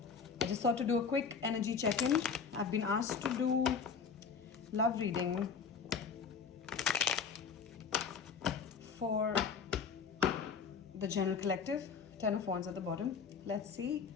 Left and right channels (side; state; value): right; quieter; 5.9 dB